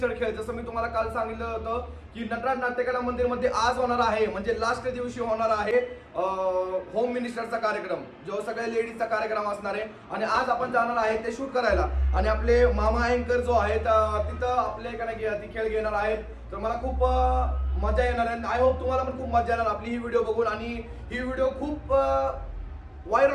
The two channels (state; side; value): identical; both; correlation 1.00